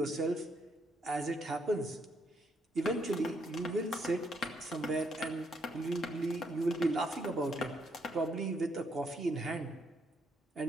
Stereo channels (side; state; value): both; normal; correlation 0.74